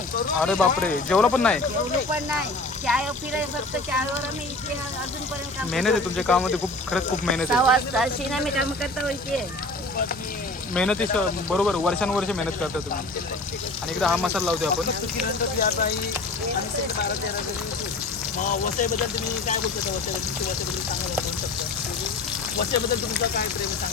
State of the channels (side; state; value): right; quieter; 3.0 dB